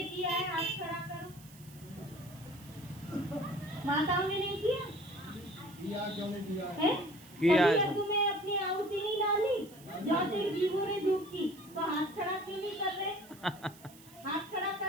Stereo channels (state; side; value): noise; right; hiss, 22 dB below the sound